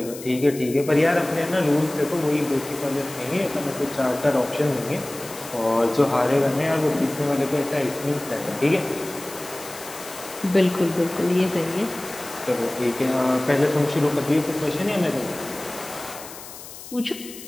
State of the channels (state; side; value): noise; left; hiss, 14 dB below the sound